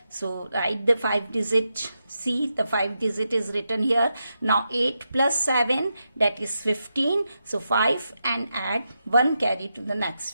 So write the 5 digit. See, the 5 digit is written here. Now 8 plus 7, that is 15. So 5 and add 1 carry to the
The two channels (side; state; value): both; inverted; correlation -0.86